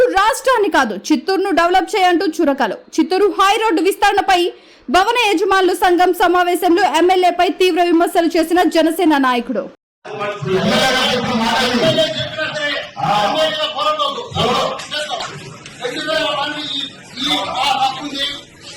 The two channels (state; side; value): identical; both; correlation 1.00